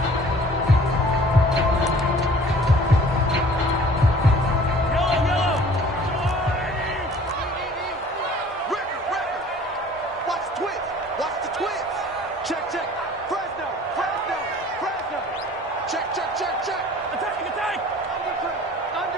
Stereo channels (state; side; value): normal; both; correlation 0.50